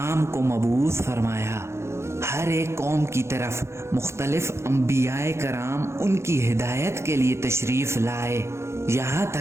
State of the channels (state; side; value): late; left; 0.13 ms